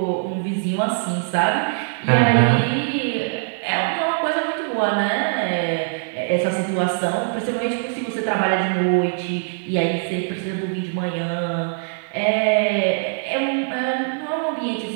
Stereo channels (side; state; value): left; silent; digital silence